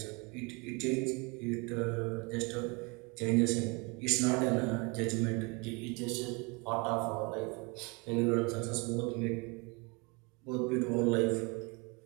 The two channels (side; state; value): left; quieter; 29.5 dB